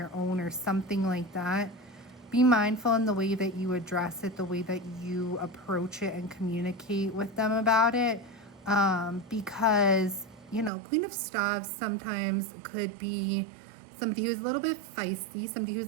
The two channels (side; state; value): left; drops out; at 10.7 s